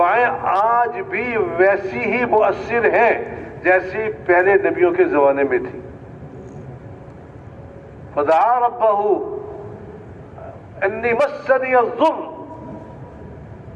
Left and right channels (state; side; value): identical; both; correlation 1.00